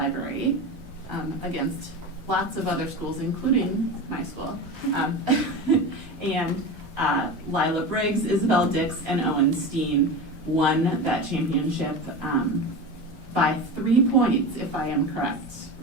against lots of other schools, including my school, and Lila Briggs, Isabel Dix, and Owen Steen won that championship by 3 points, if I am correct,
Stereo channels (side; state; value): both; normal; correlation 0.26